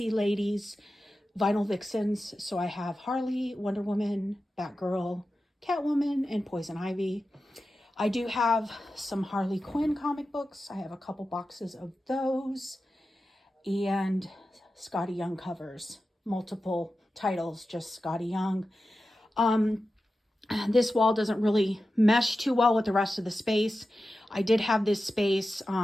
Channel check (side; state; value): both; normal; correlation 0.93